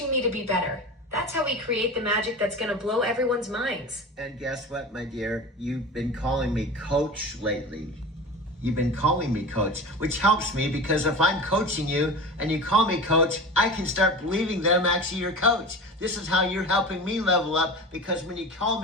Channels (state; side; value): normal; both; correlation 0.31